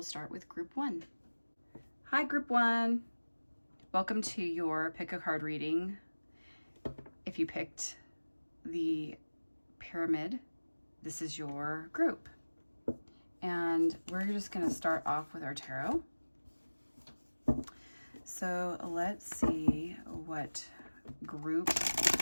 start with group one. Hi, group one. Welcome to your pick a card reading. If you picked the pyramid, this is your group. And we're just going to start off with our tarot. So let's see what group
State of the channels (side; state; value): both; inverted; correlation -1.00